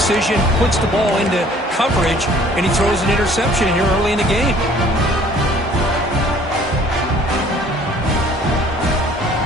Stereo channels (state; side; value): normal; both; correlation 0.55